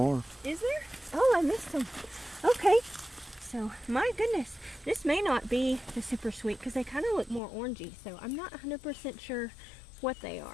Is there? Oh, I missed them. Okay. So, my goodness, this may not be the super sweet because they kind of look more orangey. So I'm not 100% sure what they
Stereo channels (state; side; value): drops out; right; at 7.4 s